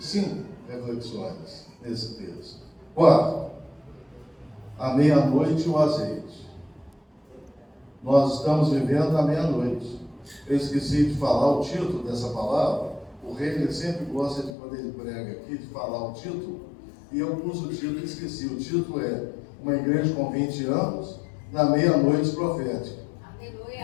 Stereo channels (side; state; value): right; drops out; at 14.6 s